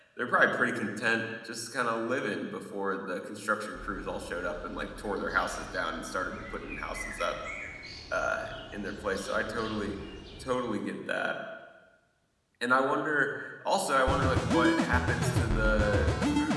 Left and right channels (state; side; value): identical; both; correlation 1.00